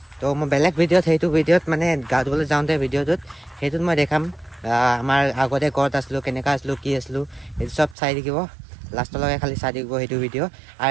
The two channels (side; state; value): left; drops out; at 8.0 s